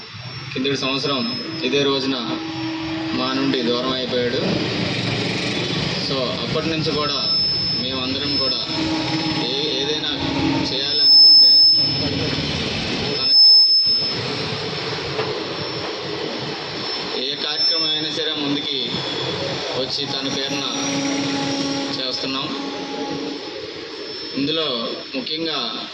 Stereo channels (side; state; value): both; identical; correlation 1.00